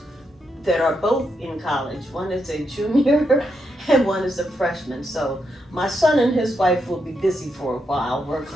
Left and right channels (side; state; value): both; normal; correlation 0.82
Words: that are both in college. One is a junior and one is a freshman. So my son and his wife will be busy for a while